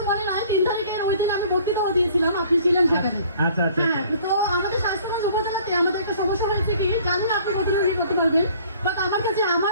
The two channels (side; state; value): both; inverted; correlation -0.54